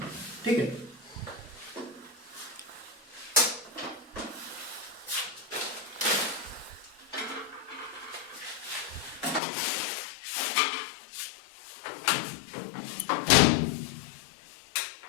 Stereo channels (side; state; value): right; drops out; at 9.4 s